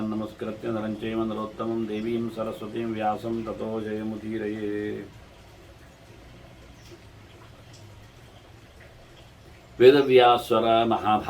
नमस्कृत्य नरं चैव नरोत्तमं देवीं सरस्वतीं व्यासं ततो जयमुदीरये ವೇದವ್ಯಾಸರ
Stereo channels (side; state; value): both; identical; correlation 1.00